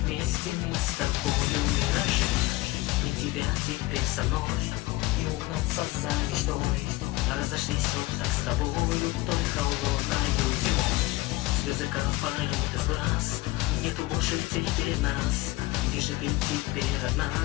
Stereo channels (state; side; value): quieter; right; 19.4 dB